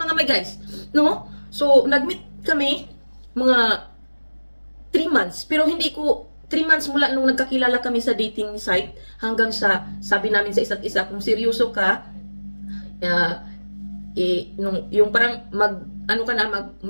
mga my guys. No? So, nag-meet kami, mga 3 months. Pero hindi ko, 3 months mula nung nagkakilala kami sa dating site, hanggang sa, sabi namin sa isa't isa, kung seryoso ka, yung parang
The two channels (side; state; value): both; inverted; correlation -1.00